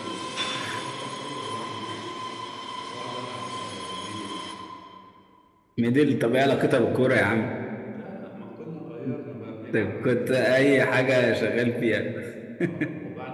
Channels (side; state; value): both; identical; correlation 1.00